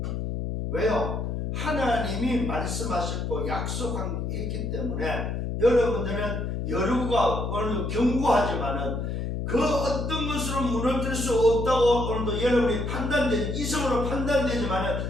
왜요? 하나님이 말씀하셨고 약속했기 때문에 여러분들은 여리고가 오늘도 견고하지만은 그 어떤 것으로 무너뜨릴 수 없다고 오늘도 여러분이 이성으로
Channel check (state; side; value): noise; left; hum, 2 dB below the sound